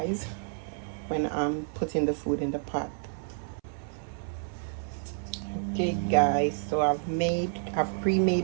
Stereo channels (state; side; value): silent; left; 58 dB below the other